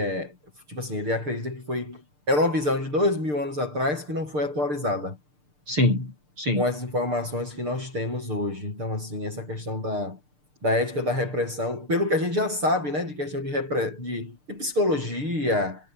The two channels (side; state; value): left; late; 6.7 ms